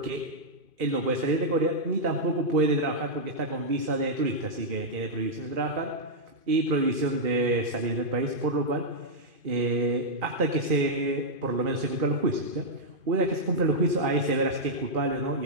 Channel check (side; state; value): left; late; 2.5 ms